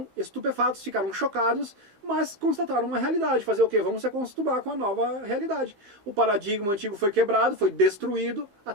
estupefatos, ficaram chocados, mas constataram uma realidade. Fazer o quê? Vamos se acostumar com a nova realidade. O paradigma antigo foi quebrado, foi destruído, a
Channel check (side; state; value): left; late; 15 ms